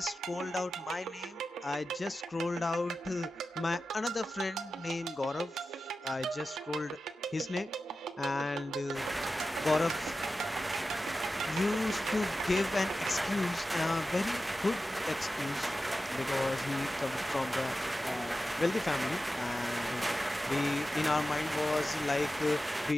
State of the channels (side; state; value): both; normal; correlation 0.93